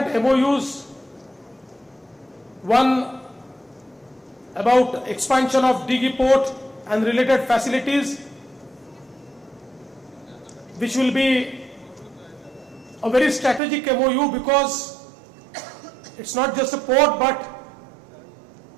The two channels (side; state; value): left; drops out; at 13.6 s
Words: MOUs. One about expansion of Dighi Port and related facilities, which will be a very strategic MOU because it's not just a port, but